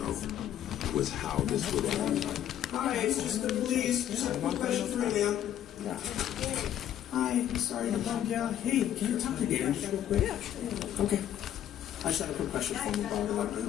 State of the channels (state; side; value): quieter; right; 10.9 dB